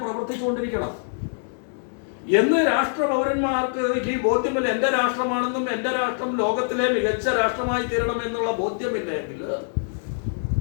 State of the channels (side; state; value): right; silent; digital silence